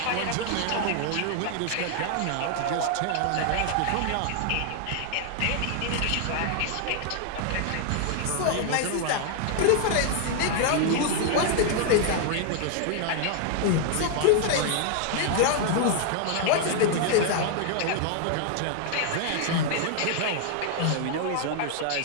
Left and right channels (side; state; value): both; different; correlation 0.00